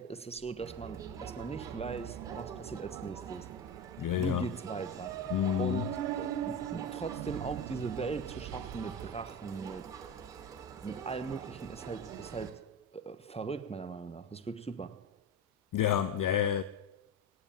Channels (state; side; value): normal; both; correlation 0.22